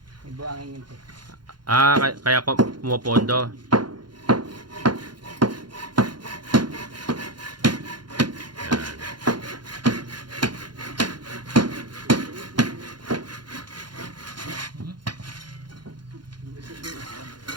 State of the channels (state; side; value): late; left; 0.71 ms